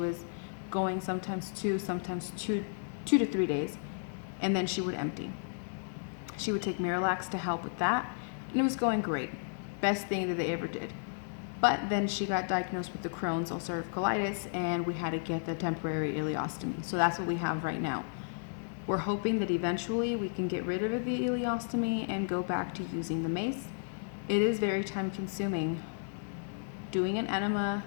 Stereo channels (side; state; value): right; silent; digital silence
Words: going sometimes two to 3 days, and then she would empty. She would take Miralax to help with that, and it was going great. Best thing that they ever did. But then she got diagnosed with the Crohn's ulcerative colitis, and we had to get the temporary ileostomy. So that's what we have right now. We're hoping that eventually we can get rid of the ileostomy and go back to using the mace. It is very time consuming. Doing an enema